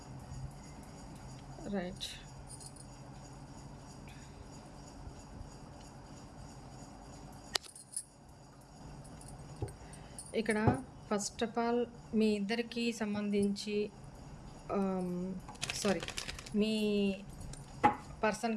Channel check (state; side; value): identical; both; correlation 1.00